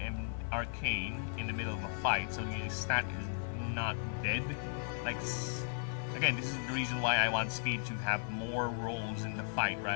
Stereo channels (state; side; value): silent; right; 54 dB below the other